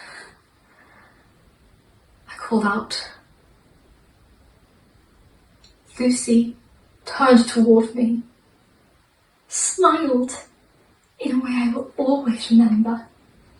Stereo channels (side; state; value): both; identical; correlation 1.00